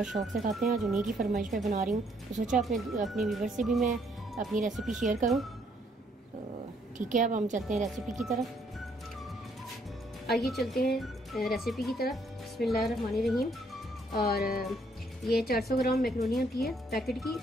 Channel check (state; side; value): normal; both; correlation 0.69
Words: शौक़ से खाते हैं। आज उन्हीं की फरमाइश पे बना रही हूँ, तो सोचा अपने व्यूअर्स से भी मैं अपनी रेसिपी शेयर करूँ। तो ठीक है, अब हम चलते हैं रेसिपी की तरफ। आइए चलते हैं रेसिपी की तरफ। बिस्मिल्लाहिर्रहमानिर्रहीम। और ये 400 ग्राम मैकरोनी होती है पैकेट